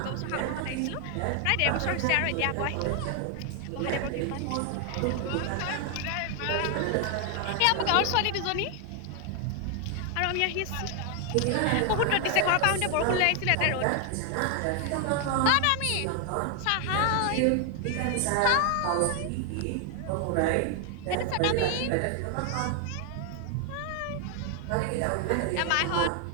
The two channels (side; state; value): both; different; correlation 0.00